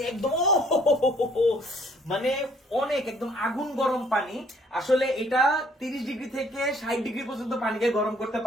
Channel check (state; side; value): normal; both; correlation 0.61